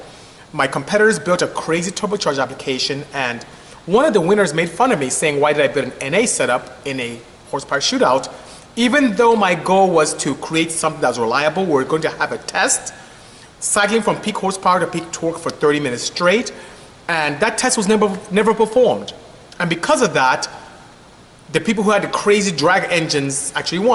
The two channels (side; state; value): both; identical; correlation 1.00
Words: My competitors built a crazy turbocharged application, and one of the winners made fun of me saying, why did I build an NA setup in a horsepower shootout? Even though my goal was to create something that was reliable, we're going to have a test, cycling from peak horsepower to peak torque for 30 minutes straight. And that test was never performed. And because of that, the people who had the crazy drag engines actually